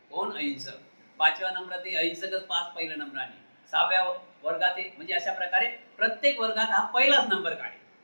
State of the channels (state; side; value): inverted; both; correlation -1.00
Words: कोण, अहिंसक. 5व्या नंबरात अहिंसकच पास पहिल्या नंबराने. 6व्या वर्गात म्हणजे अशा प्रकारे प्रत्येक वर्गात हा पहिलाच नंबर काढे.